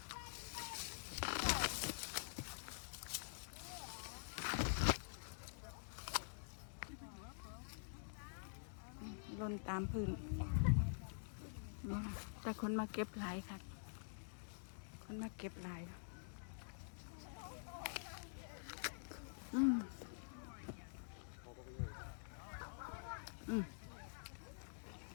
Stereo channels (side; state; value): right; silent; digital silence